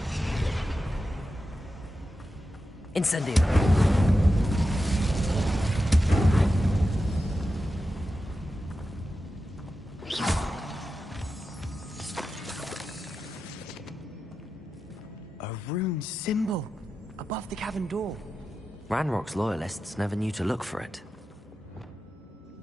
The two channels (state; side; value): normal; both; correlation 0.91